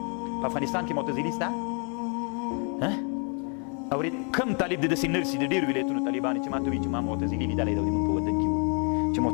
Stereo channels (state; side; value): quieter; right; 38.8 dB